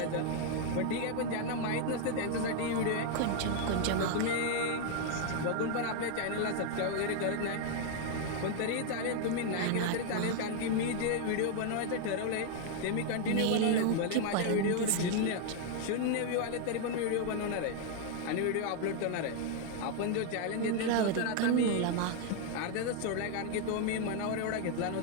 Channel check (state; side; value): different; both; correlation 0.00